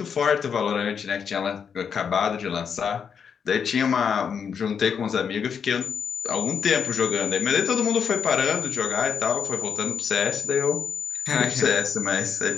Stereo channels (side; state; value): right; quieter; 6.9 dB